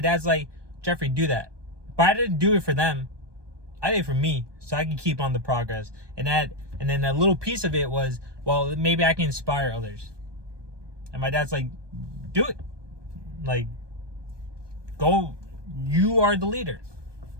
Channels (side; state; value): left; late; 1.2 ms